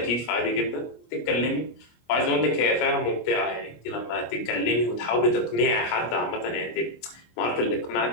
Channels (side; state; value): right; late; 25 ms